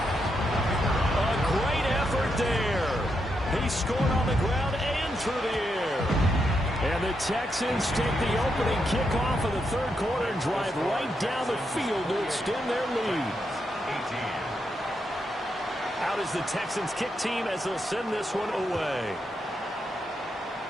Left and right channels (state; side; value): normal; both; correlation 0.82